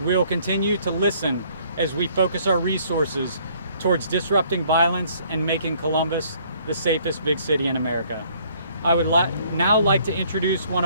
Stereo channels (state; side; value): inverted; both; correlation -0.61